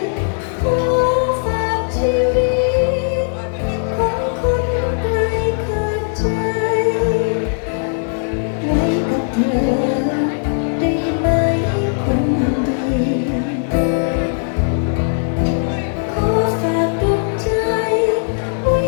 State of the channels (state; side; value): silent; right; digital silence